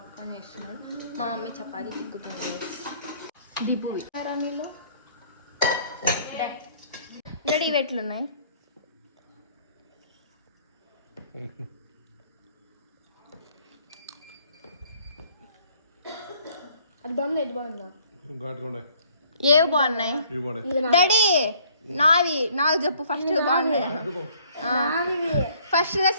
చేస్తున్నాడు, మా మమ్మీ చపాతీ తిక్కుతుంది గైస్. దిబ్బు నీళ్ళు డాడీ ఇవి ఎట్లున్నాయి? అది బాగుంది, ఇది బాగుందా? ఏవి బాగున్నాయి డాడీ? నాకు చెప్పు ఫస్ట్ బాగున్నాయి. ఫస్ట్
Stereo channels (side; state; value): both; inverted; correlation -0.60